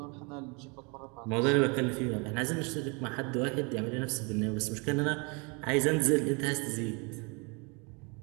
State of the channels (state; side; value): quieter; left; 31.4 dB